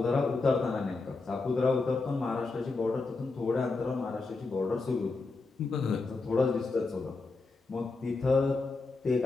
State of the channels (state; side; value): quieter; right; 3.8 dB